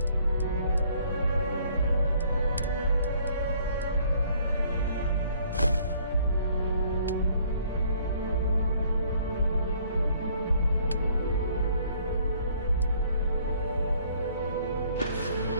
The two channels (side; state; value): both; inverted; correlation -0.61